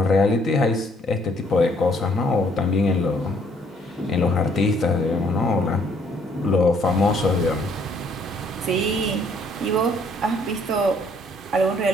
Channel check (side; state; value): both; normal; correlation 0.64